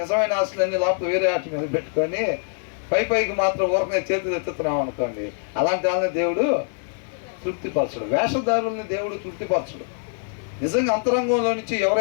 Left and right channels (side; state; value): right; silent; 61 dB below the other